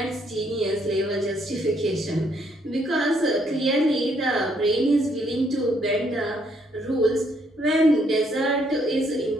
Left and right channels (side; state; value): both; normal; correlation 0.70